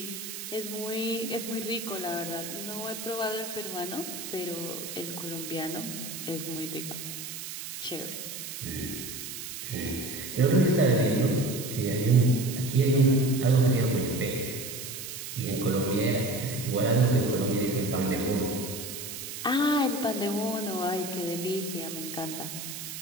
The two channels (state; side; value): noise; right; hiss, 8 dB below the sound